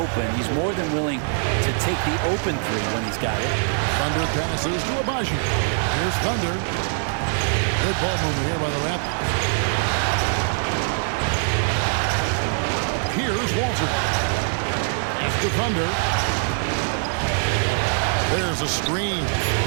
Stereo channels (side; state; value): left; silent; 60 dB below the other